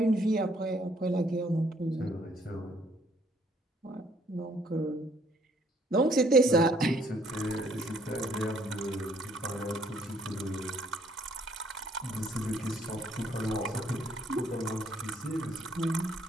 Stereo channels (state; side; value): normal; both; correlation 0.65